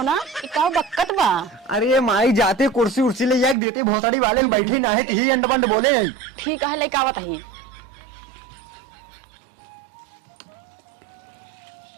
ना ये का बक्कत बा। अरे माई जाते कुर्सी उर्सी ले जाके देते भोसड़ी वाले बैठे ना है तो ही अंड बंड बोले। ठीक है लेके आवत ही।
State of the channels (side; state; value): left; drops out; at 3.6 s